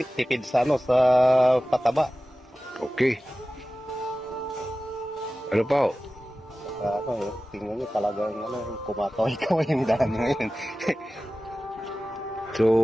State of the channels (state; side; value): normal; both; correlation 0.95